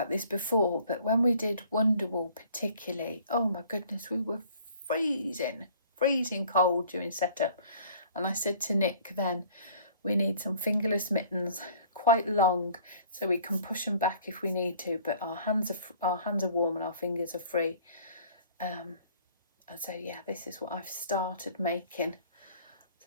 this before, but when we did Wonderwall particularly, oh my goodness, we were freezing cold during setup. And I said to Nick then, we need some fingerless mittens, quite long, so we can push them back if we need to, but our hands are warm and our fingers are free. And so yeah, this is what I've started making.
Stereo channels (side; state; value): both; inverted; correlation -0.53